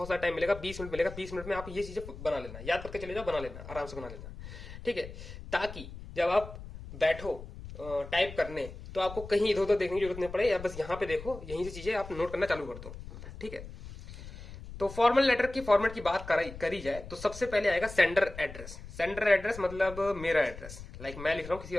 सारा टाइम मिलेगा, 20 मिनट मिलेगा। 20 मिनट में आप ये चीजें बना लेना, याद करके चले जाओ, बना लेना, आराम से बना लेना, ठीक है, ताकि जब आप बैठो टाइप करने तो आपको कहीं इधर उधर देखने की जरूरत नहीं पड़े, या बस यहाँ पे देखो, यहीं से चीजें आप नोट करना चालू कर दो, ठीक है। तो फॉर्मल लेटर की फॉर्मेट की बात करी जाए तो सबसे पहले आएगा सेंडर एड्रेस। सेंडर एड्रेस मतलब मेरा एड्रेस, लाइक मैं लिख रहा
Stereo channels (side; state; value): left; noise; rumble, 13 dB below the sound